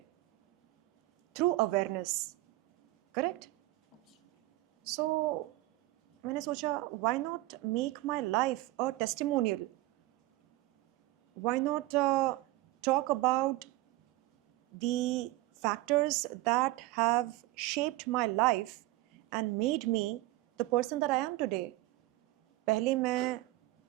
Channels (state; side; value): quieter; left; 18.9 dB